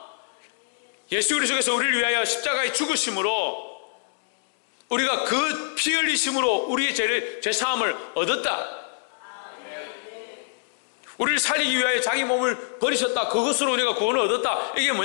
예수 그리스도께서 우리를 위하여 십자가의 죽으심으로 우리가 그 피 흘리심으로 우리의 죄사함을 얻었다. 우리를 살리기 위하여 자기 몸을 버리셨다. 그것으로 우리가 구원을 얻었다. 이게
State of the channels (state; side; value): silent; right; digital silence